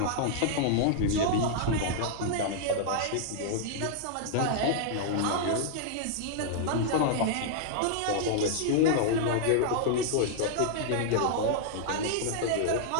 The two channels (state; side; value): different; both; correlation -0.01